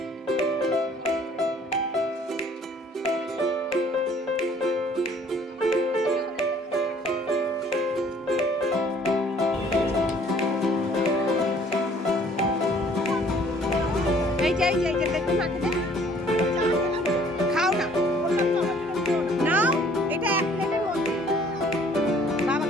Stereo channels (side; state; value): both; normal; correlation 0.57